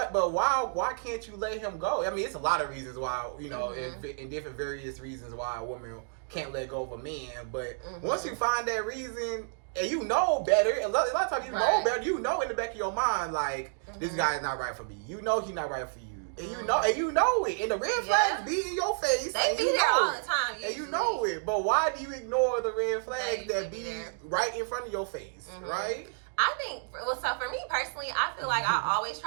can't you let him go? I mean, it's a lot of reasons why, in different various reasons why a woman can't let go of a man. But once you find that reason, and you know better, a lot of times you know better, in the back of your mind, like, this guy is not right for me. You know he's not right for you. And you know it. And the red flags be in your face. They be there all the time, usually. And you know it. But why do you ignore the red flags that be right in front of your face, right? I think, well, so for me personally, I feel like I always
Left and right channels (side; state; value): left; silent; digital silence